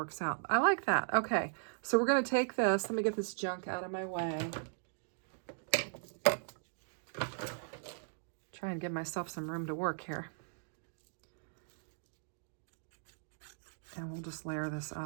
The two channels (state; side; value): silent; left; digital silence